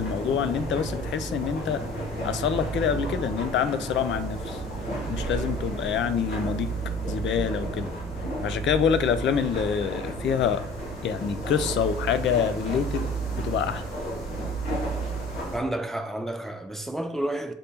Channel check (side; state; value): right; quieter; 3.7 dB